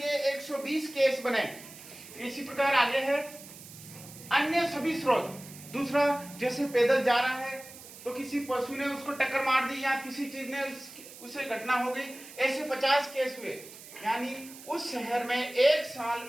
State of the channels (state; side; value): noise; right; hiss, 17 dB below the sound